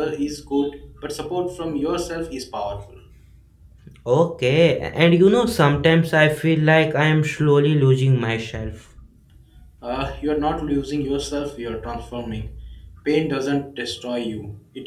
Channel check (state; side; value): identical; both; correlation 1.00